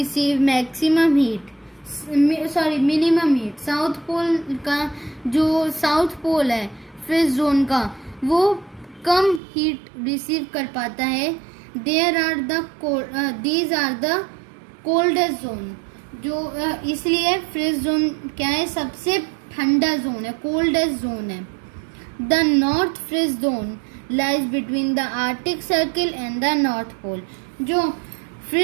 minimum heat. South pole का जो साउथ पोल है फ्रिज जोन का, वो कम हीट रिसीव कर पाता है. These are the coldest zone. जो इसलिए फ्रिज जोन क्या है? सबसे ठंडा जोन है, कोल्डेस्ट जोन है. The north frigid zone lies between the Arctic circle and the north pole. जो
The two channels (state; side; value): drops out; left; at 9.4 s